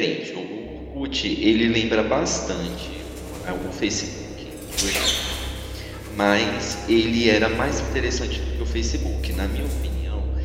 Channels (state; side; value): identical; both; correlation 1.00